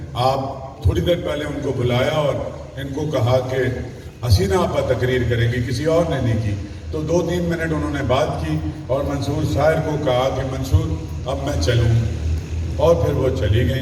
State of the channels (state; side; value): identical; both; correlation 1.00